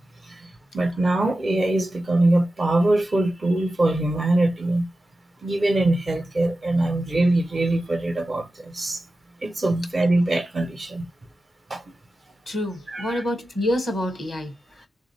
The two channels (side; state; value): both; normal; correlation 0.93